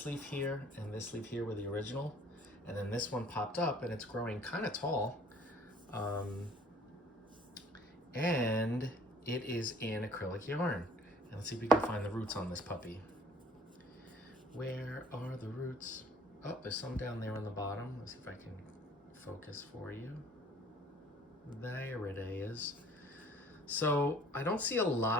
leaf here and this leaf here were the original. And then this one popped up and it's growing kind of tall. And it is in acrylic yarn. And let's see if we can find the roots on this puppy. Where are the roots? Oh, there's some down there on the bottom. Let's see if I can focus for you. There it is. So I don't see a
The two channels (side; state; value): both; normal; correlation 0.54